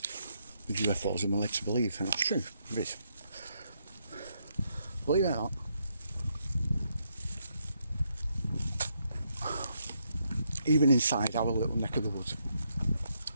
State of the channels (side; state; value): both; inverted; correlation -0.77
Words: with UFOs than we're led to believe, and that's true, it is. Believe it or not, even inside our little neck of the woods,